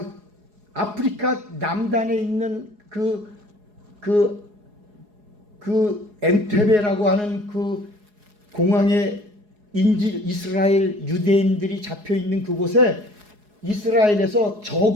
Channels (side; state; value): left; late; 4.8 ms